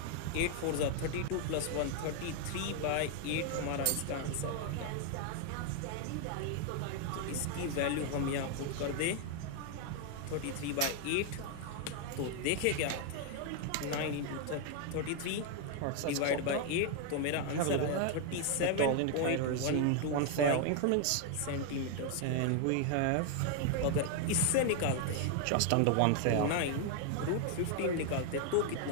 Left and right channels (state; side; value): different; both; correlation 0.00